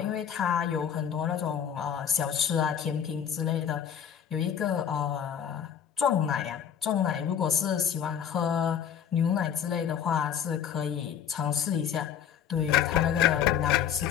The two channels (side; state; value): right; quieter; 8.7 dB